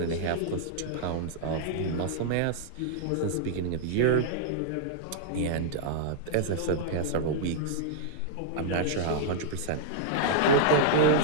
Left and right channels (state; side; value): different; both; correlation -0.01